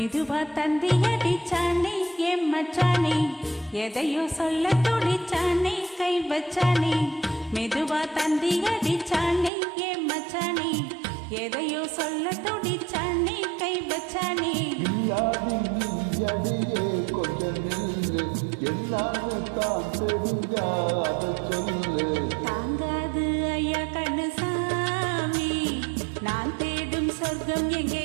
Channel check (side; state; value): left; drops out; at 9.5 s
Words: தந்தி அடிச்சானே என் மச்சானே, எதையோ சொல்ல துடிச்சானே கை வச்சானே. மெதுவா தந்தி அடிச்சானே என் மச்சானே, எதையோ சொல்ல துடிச்சானே கை வச்சானே. அடியே கொஞ்சம் நில்லு, எல்லாமே தான் தெரிஞ்சாத சொல்லு. தாங்காது ஐயா கண்ணு சாமி, நான் தேடும் சொர்க்கம் எங்கே